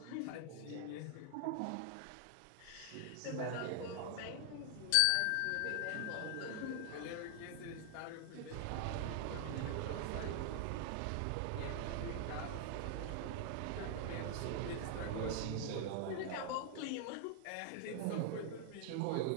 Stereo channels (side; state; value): both; different; correlation 0.00